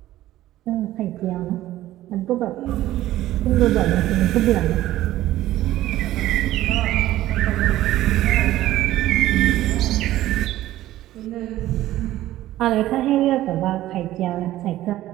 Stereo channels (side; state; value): left; quieter; 14.7 dB